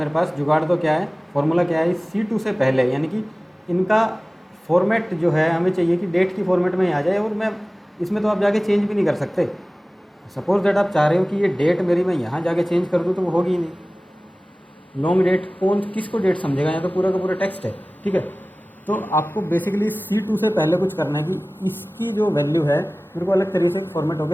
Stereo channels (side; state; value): both; normal; correlation 0.98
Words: पास, जुगाड़ तो क्या है, फॉर्मूला क्या है, C2 से पहले, यानी कि इनका फॉर्मेट जो है हमें चाहिए कि डेट की फॉर्मेट में ही आ जाए, और मैं इसमें तो आप जाके चेंज भी नहीं कर सकते। सपोज दैट आप चाह रहे हो कि ये डेट मेरी मैं यहाँ जाके चेंज कर दूँ, तो वो होगी ही नहीं। लॉन्ग डेट कौन किसको डेट समझेगा, यहाँ तो पूरा का पूरा टेक्स्ट है, ठीक है। तो आपको बेसिकली C2 से पहले कुछ करना है कि इसकी जो वैल्यू है मेरे को अलग तरीके से फॉर्मेट